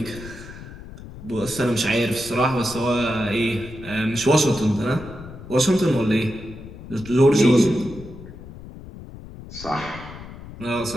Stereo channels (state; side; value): noise; left; rumble, 14 dB below the sound